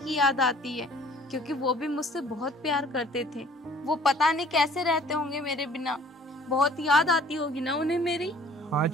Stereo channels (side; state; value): both; normal; correlation 0.54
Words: याद आती है, क्योंकि वो भी मुझसे बहुत प्यार करते थे। वो पता नहीं कैसे रहते होंगे मेरे बिना, बहुत याद आती होगी ना उन्हें मेरी। हाँ